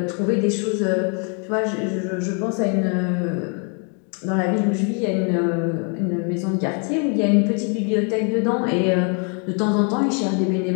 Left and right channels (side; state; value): right; quieter; 38.8 dB